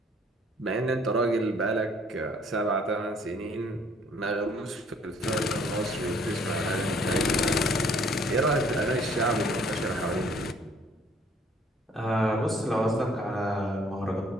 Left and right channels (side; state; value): both; normal; correlation 0.59